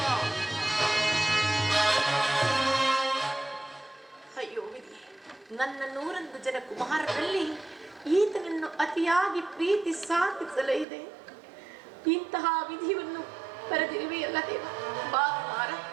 ಅಯ್ಯೋ ವಿಧಿ, ನನ್ನ 101 ಜನ ಕುಮಾರರಲ್ಲಿ ಈತನನ್ನು ಅತಿಯಾಗಿ ಪ್ರೀತಿ ಸಾಧಿಸಲಿದೆ. ಇಂತಹ ವಿಧಿಯನ್ನು ಬರೆದಿರುವೆಯಲ್ಲ ದೇವ. ಬಾ ಕುಮಾರ,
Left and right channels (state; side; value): drops out; left; at 10.9 s